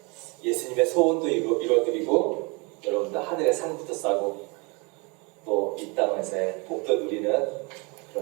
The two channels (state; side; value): quieter; left; 29.9 dB